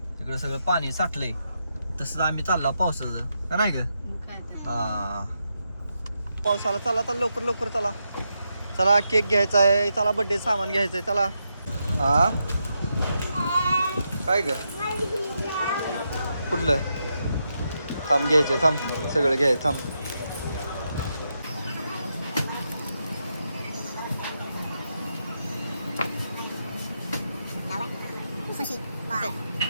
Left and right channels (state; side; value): inverted; both; correlation -0.84